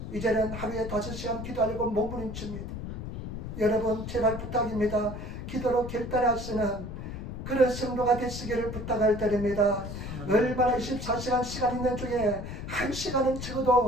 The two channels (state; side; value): noise; left; rumble, 8 dB below the sound